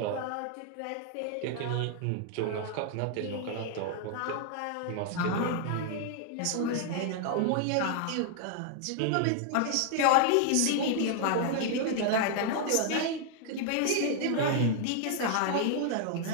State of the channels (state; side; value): different; both; correlation 0.00